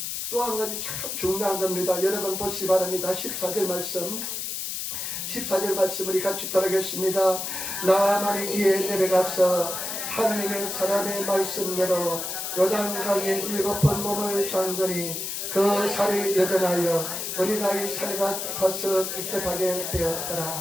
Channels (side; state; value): left; noise; hiss, 4 dB below the sound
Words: 또 한 가지 참 중요한 겁니다. 여러분 보시기 바랍니다. 14절 말씀 우리 같이 따르겠습니다. 나만이 이에 내려가서 하나님의 사람의 말씀대로 요단강에 7번 몸을 잠그니 그 살이 여전하여 어린아이 살이가 타서 깨끗하게